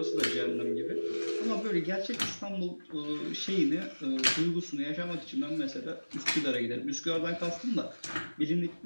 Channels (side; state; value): both; inverted; correlation -1.00